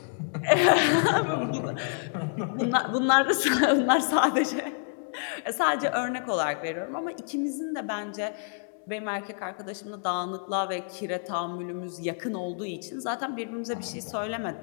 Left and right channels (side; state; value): right; silent; digital silence